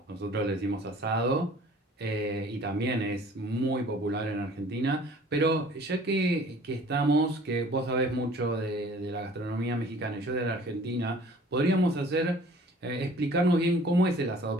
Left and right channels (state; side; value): normal; both; correlation 0.50